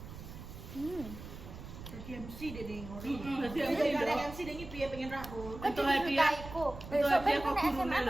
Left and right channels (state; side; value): noise; right; rumble, 12 dB below the sound